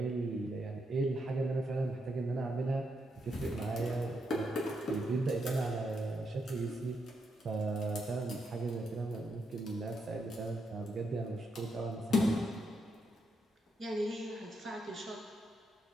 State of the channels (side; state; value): both; normal; correlation 0.81